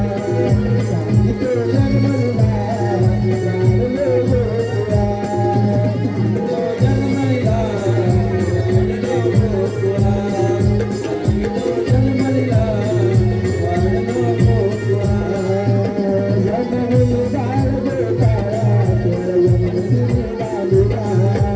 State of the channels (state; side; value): identical; both; correlation 1.00